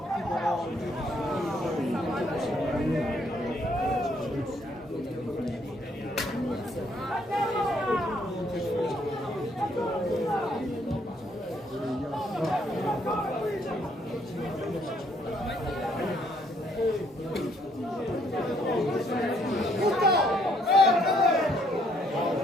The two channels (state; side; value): normal; both; correlation 0.68